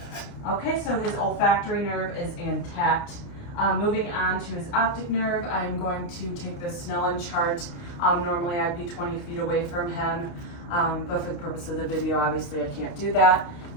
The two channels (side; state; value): right; late; 29 ms